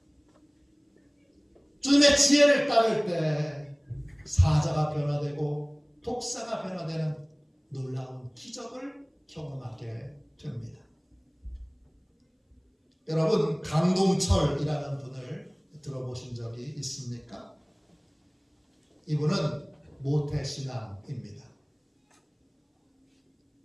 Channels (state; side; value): identical; both; correlation 1.00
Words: 주님의 지혜를 따를 때 사자가 변화되고 독사가 변화되는 놀라운 기적을 경험하게 됩니다. 여러분, 강동철이라는 분을 들어보신 적이 있습니까? 이분은 모태신앙입니다.